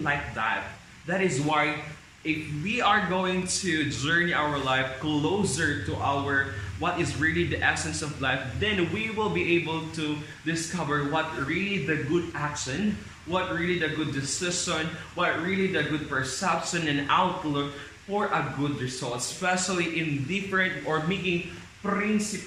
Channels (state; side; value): identical; both; correlation 1.00